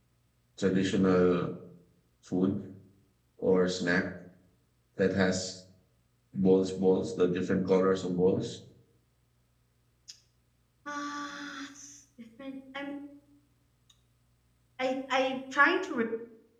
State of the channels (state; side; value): identical; both; correlation 1.00